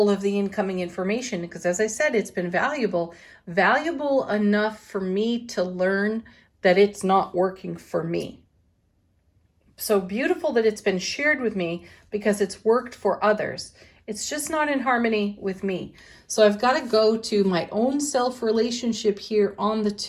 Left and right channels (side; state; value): both; identical; correlation 1.00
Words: of the incoming information, because as I said, it's been valuable enough for me to learn that it's not working for me. So beautiful that it's been shared with me because it's worked for others. It's just not in harmony with me. So I've got to go to my own self-relationship here on the